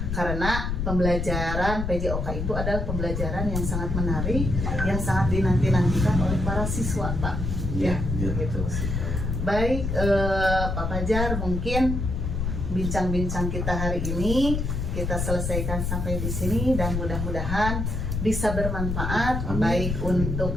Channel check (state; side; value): noise; left; rumble, 2 dB below the sound